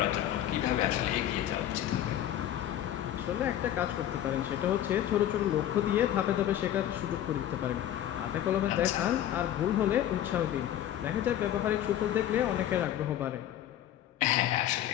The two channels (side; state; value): right; quieter; 11.7 dB